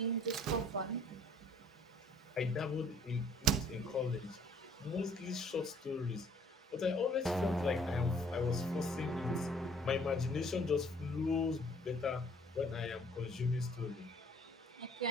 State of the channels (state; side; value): normal; both; correlation 0.58